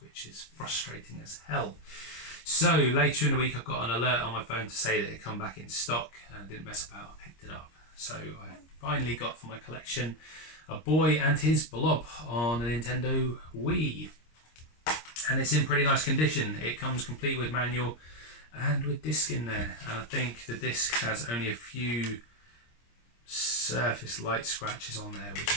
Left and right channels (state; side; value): late; right; 26 ms